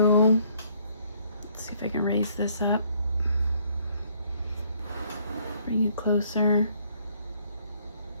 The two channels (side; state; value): both; inverted; correlation -0.64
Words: let's see if I can raise this up. Bring you closer.